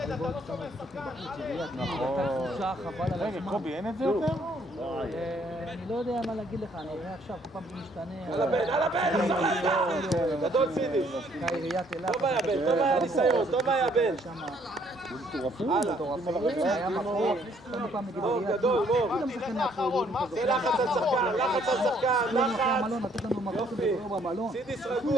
לא שומר שחקן, נכון. רגע, קובי, אין את זה יותר? אני לא יודע מה להגיד לך, אני אראה עכשיו, כל פעם זה משתנה. על הבן! גדול סידי! עיריית אילת. טוב היה בן, טוב היה ניסיון, טוב היה בן! היה מקום, כל פעם נגיד עיריית אילת. גדול, מור! זה לחץ על שחקן, לחץ! לתת לנו מקום כדור במלון. סידיס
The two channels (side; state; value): both; normal; correlation 0.65